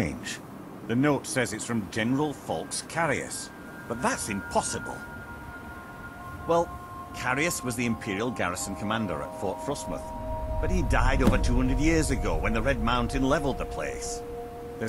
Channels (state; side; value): identical; both; correlation 1.00